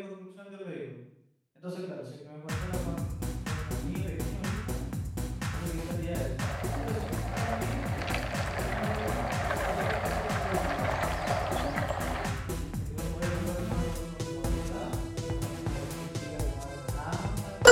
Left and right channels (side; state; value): both; identical; correlation 1.00